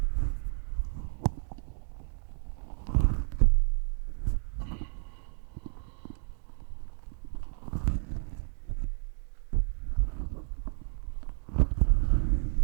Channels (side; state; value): left; silent; 57 dB below the other